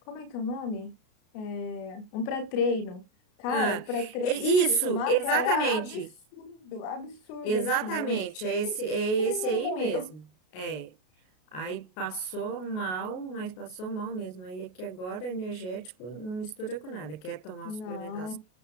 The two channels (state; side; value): late; right; 33 ms